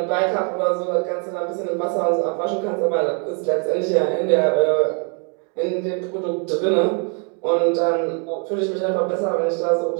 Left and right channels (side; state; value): left; quieter; 39.8 dB